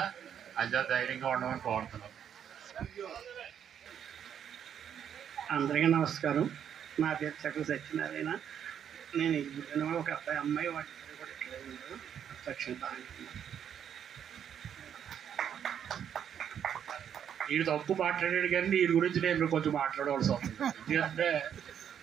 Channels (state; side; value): quieter; left; 8.8 dB